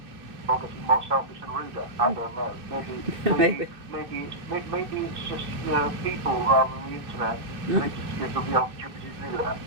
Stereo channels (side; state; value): left; late; 2.6 ms